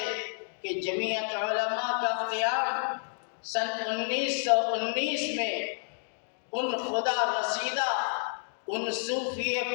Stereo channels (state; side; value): silent; right; digital silence